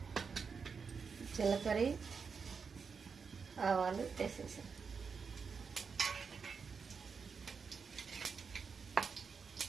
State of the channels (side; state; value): left; quieter; 5.6 dB